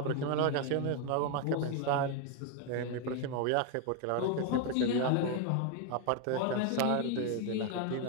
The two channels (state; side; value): different; both; correlation 0.01